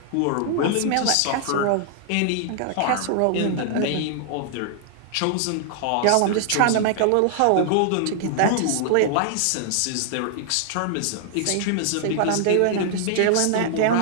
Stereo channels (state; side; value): different; both; correlation -0.01